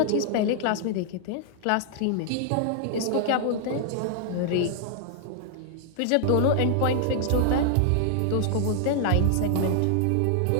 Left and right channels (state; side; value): different; both; correlation 0.00